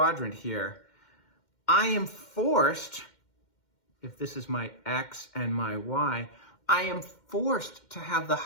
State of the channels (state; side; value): late; right; 2.1 ms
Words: here, I am forced, if this is my x and my y, I am forced to have the